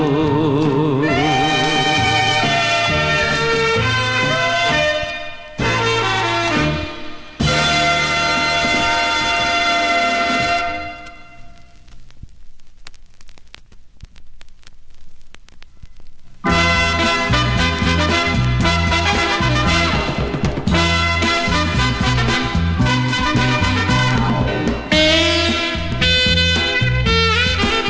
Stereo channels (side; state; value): both; identical; correlation 1.00